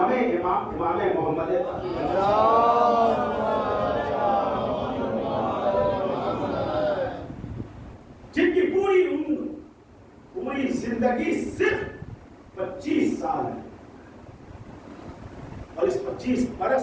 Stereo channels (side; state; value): both; identical; correlation 1.00